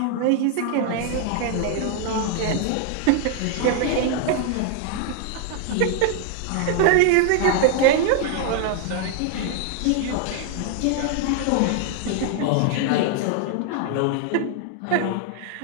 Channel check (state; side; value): different; both; correlation 0.00